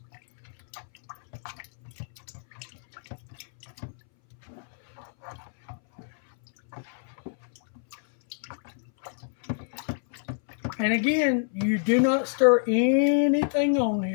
And again, you do not stir anything on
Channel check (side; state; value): right; silent; 60 dB below the other